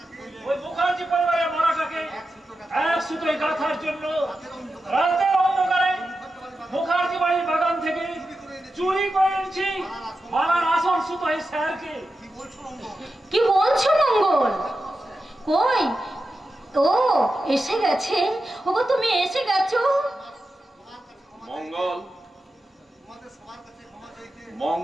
ওই মুখার্জি পরিবারের মরাটাকে এক সুতোয় গাঁথার জন্য রাতের অন্ধকারে মুখার্জি বাড়ির বাগান থেকে চুরি করে এনেছি মালার আসল সুতোয় স্যারকে। কি বলছো মঙ্গল? কই? ও এসে গেছে। ওগো তুমি এসে গেছো।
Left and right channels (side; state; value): both; normal; correlation 0.91